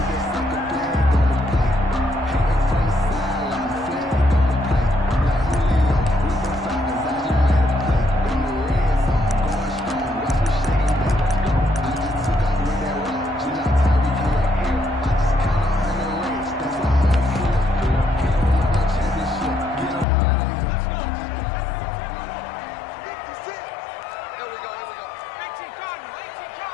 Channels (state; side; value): drops out; right; at 20.1 s